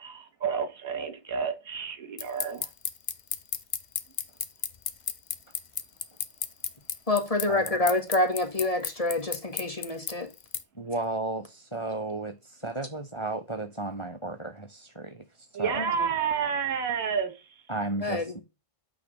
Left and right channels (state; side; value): late; right; 2.1 ms